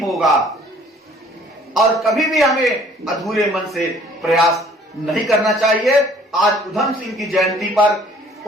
और कभी भी हमें अधूरे मन से प्रयास नहीं करना चाहिए। आज उधम सिंह की जयंती पर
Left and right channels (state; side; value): normal; both; correlation 0.56